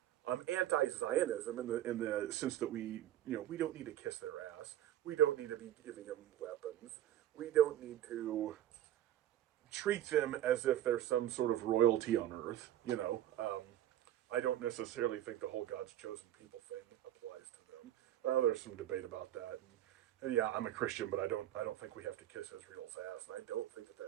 anti-Zionism in the sense that we don't need to kiss their ass. We don't need to be giving them weapons. We don't need to treat them as if they're some sort of royalty on earth. I don't necessarily think the whole God's chosen people thing applies to them. There's some debate about that. And yeah, I'm a Christian, but I don't think we have to kiss Israel's ass, and I don't think that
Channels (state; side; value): quieter; left; 12.6 dB